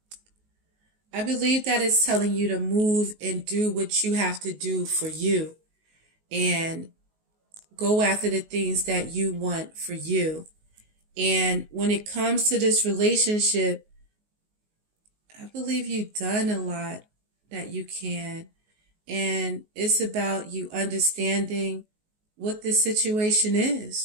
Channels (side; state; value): left; late; 19 ms